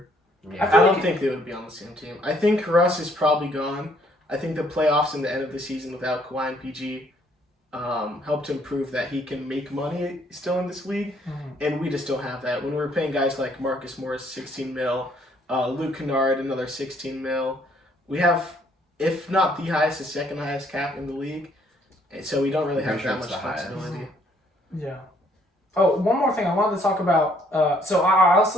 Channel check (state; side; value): normal; both; correlation 0.65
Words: Yeah. I don't think they would be on the same team. I think Russ is probably gone. I think the playoffs and the end of the season without Kawhi and PG helped him prove that he can make money still in this league, and we just don't have that. When we're paying guys like Marcus Morris, 16 mil, Luke Kennard, another 16 mil, we have, if not the highest, the second highest cap in the league, and so we don't really have that much flexibility. Yeah. Oh, one more thing I wanted to talk about. So I also